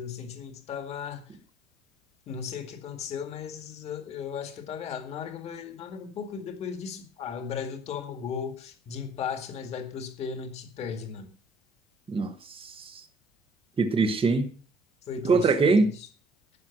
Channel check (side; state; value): both; normal; correlation 0.61